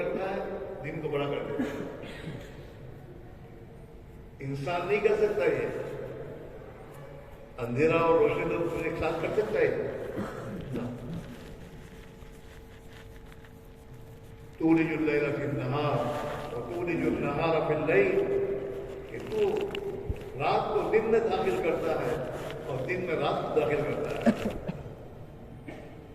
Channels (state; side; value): identical; both; correlation 1.00